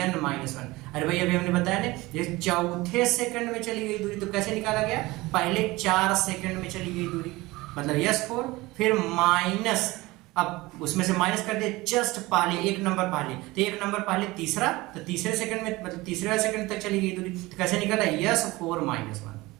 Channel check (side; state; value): left; quieter; 20.7 dB